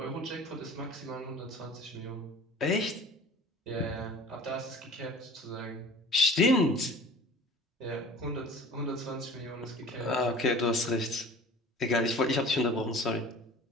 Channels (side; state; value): both; normal; correlation 0.43